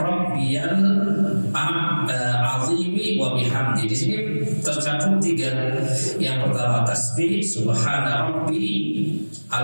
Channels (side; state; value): both; inverted; correlation -1.00